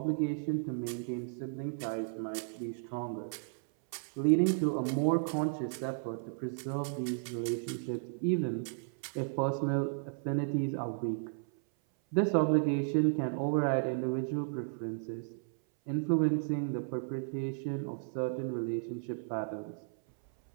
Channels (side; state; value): left; silent; 55 dB below the other